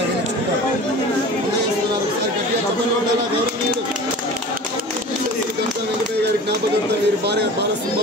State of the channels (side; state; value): both; normal; correlation 0.39